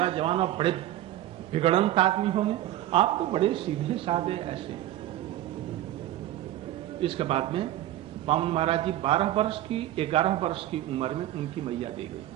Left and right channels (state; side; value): quieter; left; 13.9 dB